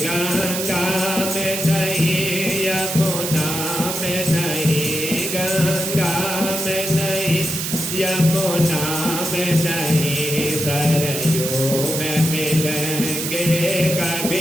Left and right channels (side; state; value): right; noise; hiss, 3 dB below the sound